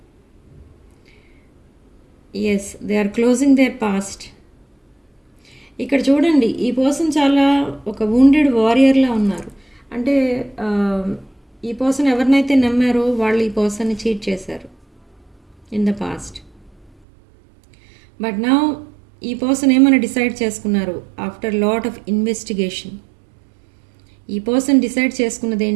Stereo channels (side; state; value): left; drops out; at 16.9 s